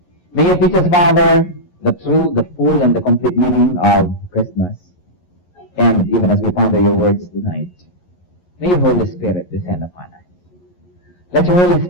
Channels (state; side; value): late; right; 11 ms